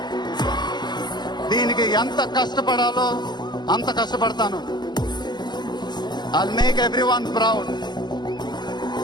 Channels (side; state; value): right; late; 0.21 ms